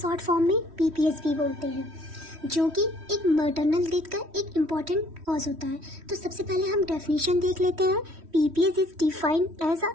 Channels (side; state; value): left; late; 3.1 ms